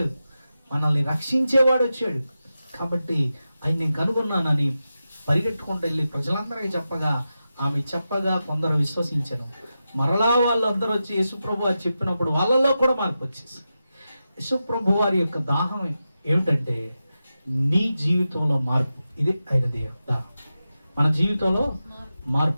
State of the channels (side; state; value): both; inverted; correlation -0.91